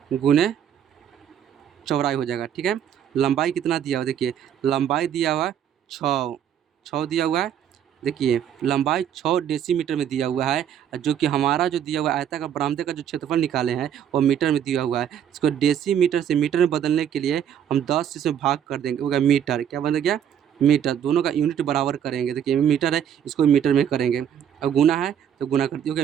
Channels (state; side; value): quieter; left; 9.3 dB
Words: गुने चौड़ाई हो जाएगा। ठीक है, लंबाई कितना दिया हुआ, देखिए लंबाई दिया हुआ 6 दिया हुआ है, देखिए लंबाई 6 डेसीमीटर में दिया हुआ है, जो कि हमारा जो दिया हुआ आयताकार बरामदे का जो क्षेत्रफल निकाले हैं वो मीटर में दिया हुआ है। इसको डेसीमीटर से मीटर में बदलने के लिए हम 10 से भाग कर देंगे, होगा मीटर, क्या बन गया मीटर, दोनों का यूनिट बराबर करेंगे। देखिए मीटर है, इसको मीटर में करेंगे, अब गुना है तो गुना कर दिया, हो गया